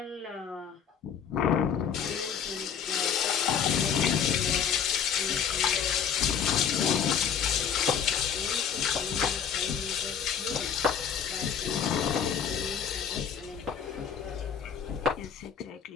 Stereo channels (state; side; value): quieter; right; 7.6 dB